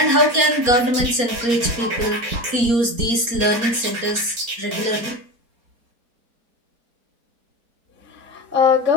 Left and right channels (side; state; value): left; late; 4.3 ms